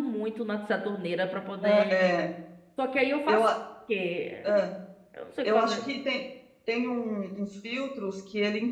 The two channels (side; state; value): both; identical; correlation 1.00